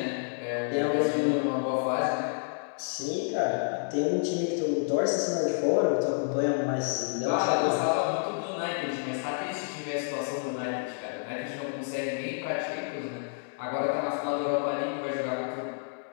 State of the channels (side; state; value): right; silent; digital silence